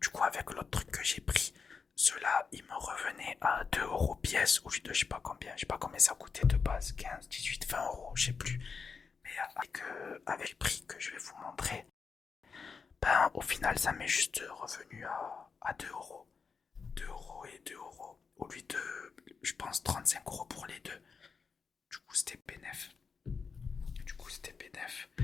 coup, avec l'autre truc que j'ai pris, ceux-là, ils me revenaient à 2 euros pièce au lieu de je sais pas combien ça coûtait de base, 15, 18, 20 euros, je sais plus. Mais avec le prix que je vais vous montrer, ben au final, ça m'est juste revenu à 2 euros. 2 euros et 2 euros au lieu de, je pense, 35 euros pour les deux. Du coup, c'était bénef.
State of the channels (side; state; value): right; quieter; 5.4 dB